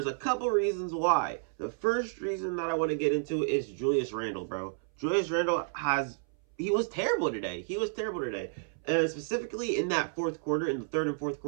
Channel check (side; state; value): left; silent; 57 dB below the other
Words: a couple reasons why. The first reason that I want to get into is Julius Randle, bro. Julius Randle he was terrible today. He was terrible today. And specifically in that fourth quarter, in the third and fourth